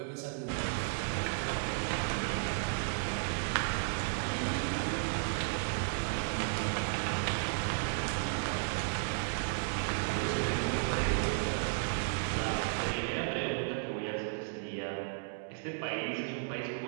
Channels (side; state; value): left; silent; digital silence